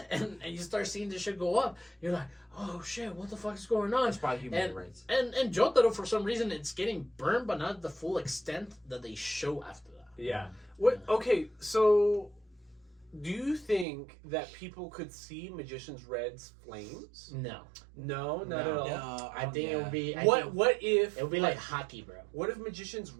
And you start seeing this shit go up. You're like, oh shit, what the fuck is going on? It's probably human rights. And Jotaro, for some reason, it's getting burned, but not the full extent that they show after that. Yeah. What? Okay, so do you think that people could see Magician's Red's flames? No. No, not at all. No, I think it would be... What if... It would be like hockey, bro. What if Magician's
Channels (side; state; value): left; drops out; at 13.9 s